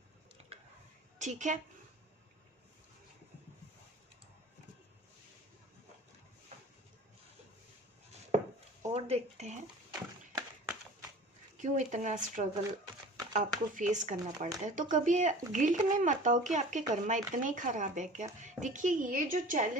ठीक है, और देखते हैं क्यों इतना स्ट्रगल आपको फेस करना पड़ता है। तो कभी गिल्ट में मत आओ कि आपके कर्मा इतने ही खराब है क्या। देखिए, ये जो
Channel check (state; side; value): normal; both; correlation 0.42